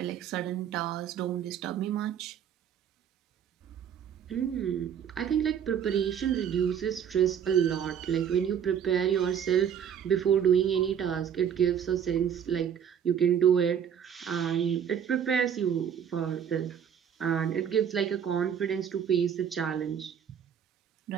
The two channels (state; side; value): quieter; left; 8.4 dB